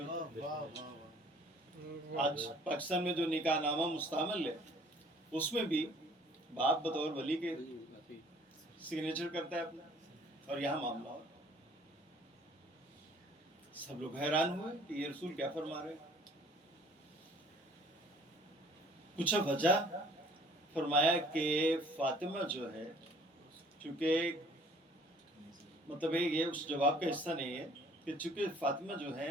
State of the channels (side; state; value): both; normal; correlation 0.55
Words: ہے۔ واہ واہ واہ، آج پاکستان میں جو نکاح نامہ مستعمل ہے اس میں بھی باپ بطور ولی کے سگنیچر کرتا ہے اپنا، اور یہاں معاملہ ہو۔ سب لوگ حیران ہوئے کہ یہ رسول کیا فرما رہے ہیں۔ پوچھا وجہ، فرمایا کہ فاطمہ جو ہے، چونکہ مطلب یہ اس جواب کا حصہ نہیں ہے کہ چونکہ فاطمہ جو ہے